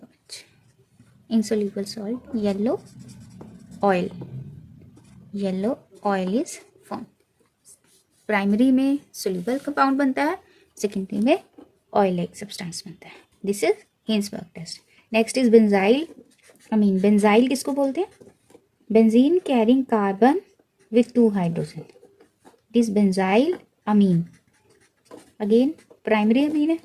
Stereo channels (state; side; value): identical; both; correlation 1.00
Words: Insoluble salt, yellow oil. Yellow oil is formed. Primary में soluble compound बनता है, secondary में oil like substance बनता है. This is Hinsberg test. Next is benzyl amine. Benzyl किसको बोलते हैं? Benzene carrying carbon with 2 hydrogen. This benzyl amine again primary amine है.